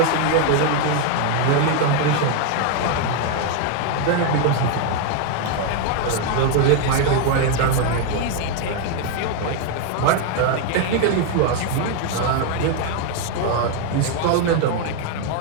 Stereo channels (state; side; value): different; both; correlation 0.01